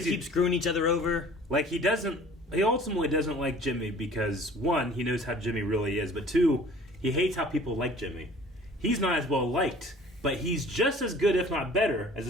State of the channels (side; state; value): both; normal; correlation 0.49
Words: they keep screwing each other over. Like, he ultimately doesn't like Jimmy because, one, he knows how Jimmy really is, but two, he hates how people like Jimmy. He's not as well liked, but he's just as good, if not better, as a